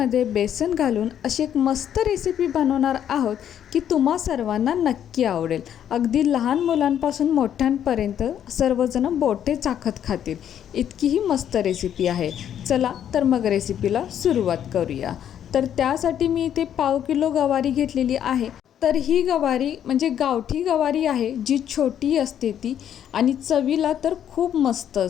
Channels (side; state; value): right; quieter; 9.8 dB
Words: बेसन घालून अशी एक मस्त रेसिपी बनवणार आहोत की तुम्हा सर्वांना नक्की आवडेल. अगदी लहान मुलांपासून मोठ्यांपर्यंत सर्वजण बोटे चाखत खातील इतकी ही मस्त रेसिपी आहे. चला तर मग रेसिपीला सुरुवात करूया. तर त्यासाठी मी इथे 1/2 किलो गवारी घेतलेली आहे. तर ही गवारी म्हणजे गावठी गवारी आहे, जी छोटी असते ती आणि चवीला तर खूप मस्त